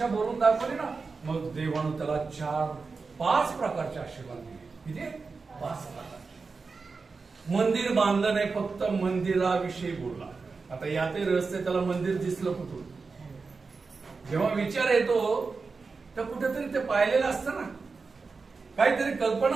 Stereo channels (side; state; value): left; quieter; 4.5 dB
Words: बोलून दाखवली ना, मग देवानं त्याला 4-5 प्रकारचे आशीर्वाद दिले. किती? 5 प्रकारचे. मंदिर बांधलं नाही, फक्त मंदिराविषयी बोलला. आता यातही रहस्य, त्याला मंदिर दिसलं कुठून? जेव्हा विचार येतो तर कुठेतरी ते पाहिलेलं असतं ना, काहीतरी